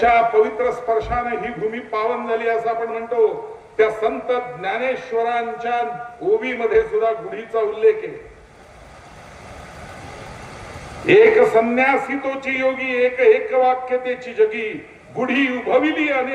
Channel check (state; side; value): identical; both; correlation 1.00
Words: पवित्र स्पर्शाने ही भूमी पावन झाली असं आपण म्हणतो, त्या संत ज्ञानेश्वरांच्या ओवीमध्ये सुद्धा गुढीचा उल्लेख आहे. एक संन्यासी तोची योगी, एक एक वाक्यतेची जगी, गुढी उभविली